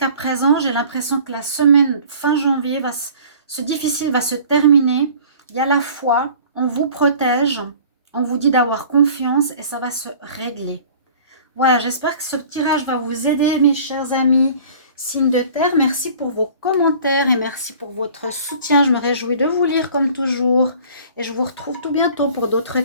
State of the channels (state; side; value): inverted; both; correlation -0.47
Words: présent, j'ai l'impression que la semaine fin janvier, ce difficile va se terminer. Il y a la foi, on vous protège, on vous dit d'avoir confiance et ça va se régler. Voilà, j'espère que ce tirage va vous aider, mes chers amis. Signe de terre, merci pour vos commentaires et merci pour votre soutien. Je me réjouis de vous lire comme toujours. Et je vous retrouve tout bientôt pour d'autres